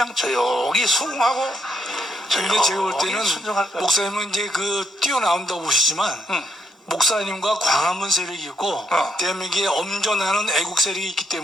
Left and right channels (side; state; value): both; normal; correlation 0.75